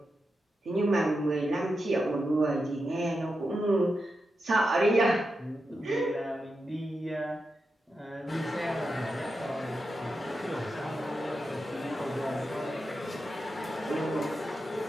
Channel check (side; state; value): both; normal; correlation 0.88